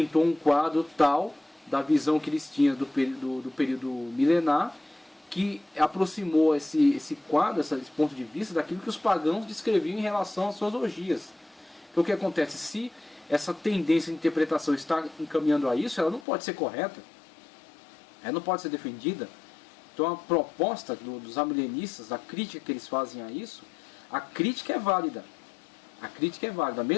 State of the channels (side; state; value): right; drops out; at 16.2 s